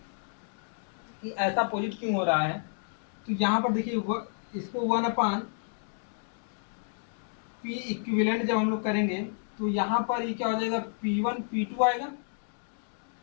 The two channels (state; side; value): silent; right; digital silence